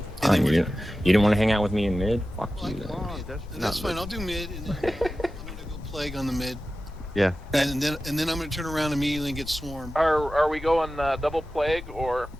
You didn't want to hang out with me in mid? Fuck you. And that's fine. I'll do mid, and then I'm gonna go plague on the mid. Yeah. And then I'm gonna turn around immediately and get swarmed. Are we going double plague or?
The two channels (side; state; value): both; normal; correlation 0.94